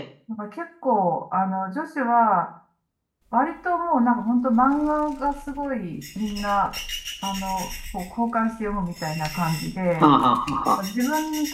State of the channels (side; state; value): both; identical; correlation 1.00